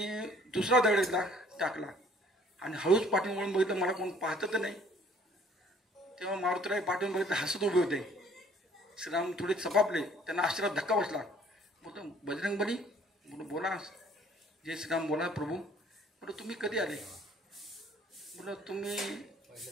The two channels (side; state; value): both; normal; correlation 0.57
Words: दुसरा दगड टाकला आणि हळूच पाठवून वळून बघितलं, मला कोण पाहतं तर नाही. तेव्हा मारुतीराय पाठवून बघितलं, हसत उभे होते. श्रीराम थोडे चपापले, त्यांना आश्चर्यात धक्का बसला. बोलतो बजरंगबली, बोला. जय श्रीराम, बोला प्रभू. बोलतो तुम्ही कधी आले? बोला तुम्ही